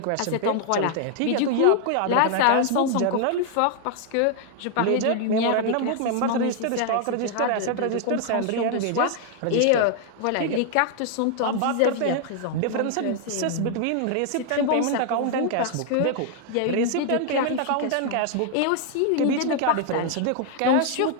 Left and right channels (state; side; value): different; both; correlation 0.00